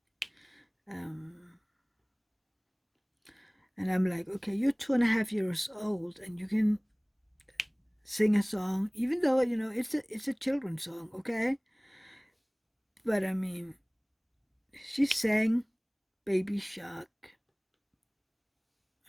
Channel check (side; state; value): both; identical; correlation 1.00